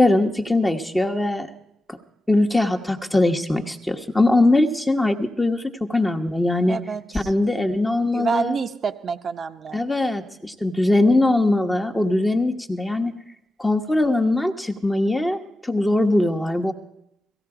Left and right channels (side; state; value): both; normal; correlation 0.92